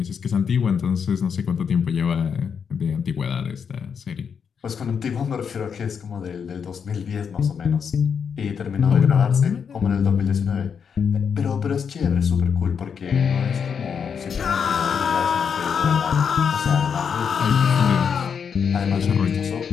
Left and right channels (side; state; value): right; quieter; 6.8 dB